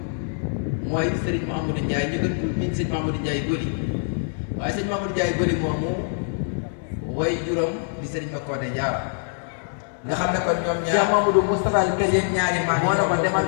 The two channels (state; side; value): silent; right; digital silence